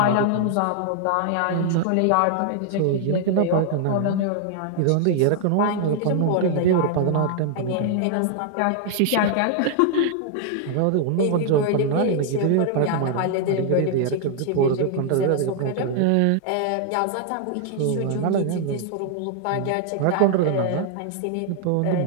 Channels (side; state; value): both; different; correlation 0.00